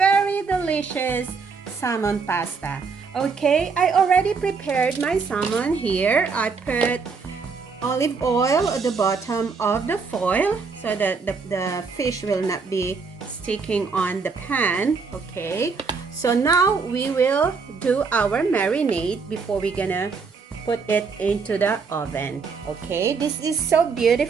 delicious salmon pasta. Okay, I already prepared my salmon here. I put olive oil at the bottom of the foil so that the fish will not be sticking on the pan. Okay, so now we will do our marinade before we're gonna put it into the oven. Okay, this is so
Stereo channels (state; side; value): quieter; left; 5.0 dB